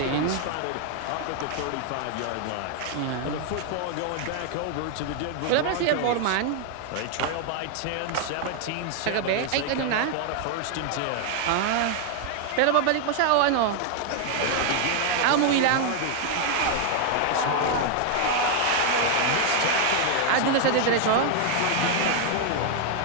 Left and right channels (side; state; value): both; different; correlation 0.00